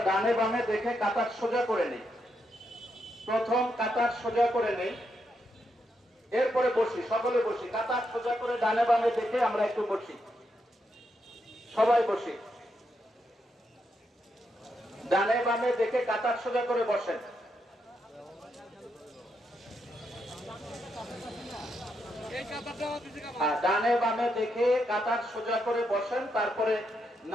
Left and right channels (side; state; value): both; normal; correlation 0.81